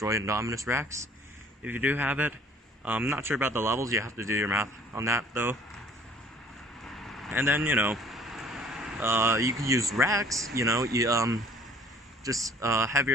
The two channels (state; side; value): normal; both; correlation 0.54